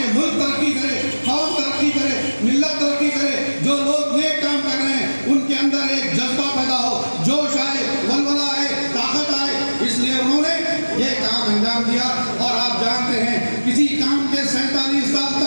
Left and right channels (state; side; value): inverted; both; correlation -1.00